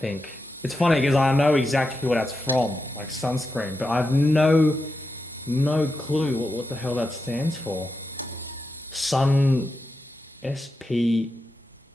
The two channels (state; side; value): normal; both; correlation 0.88